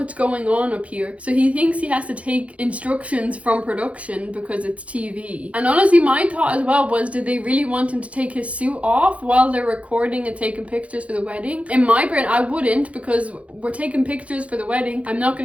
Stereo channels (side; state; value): left; late; 0.064 ms